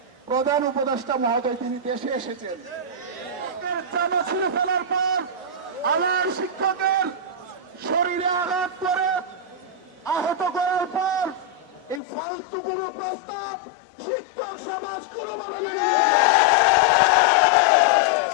প্রধান উপদেষ্টা মহোদয় তিনি দেশে এসেছেন, জামা ছিঁড়ে ফেলার পর আমার শিক্ষকের শরীরে আঘাত করে আহত করার পর এই ফালতু কোনো প্রস্তাব শিক্ষক সমাজ কোনো বড় মেনে নেবে না।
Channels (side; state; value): right; drops out; at 12.0 s